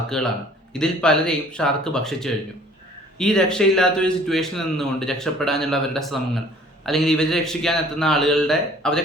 ഇതിൽ പലരെയും ഷാർക്ക് ഭക്ഷിച്ചു കഴിഞ്ഞു. ഈ രക്ഷയില്ലാത്തൊരു സിറ്റുവേഷനിൽ നിന്നുകൊണ്ട് രക്ഷപ്പെടാനുള്ള അവരുടെ ശ്രമങ്ങൾ, അല്ലെങ്കിൽ ഇവരെ രക്ഷിക്കാൻ എത്തുന്ന ആളുകളുടെ അവരെ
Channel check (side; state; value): both; normal; correlation 0.53